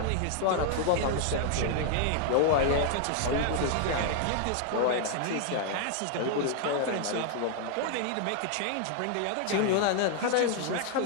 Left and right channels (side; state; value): both; different; correlation 0.00